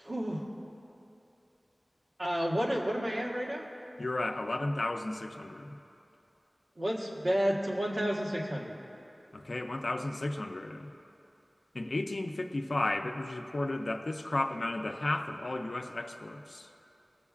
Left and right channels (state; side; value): normal; both; correlation 0.98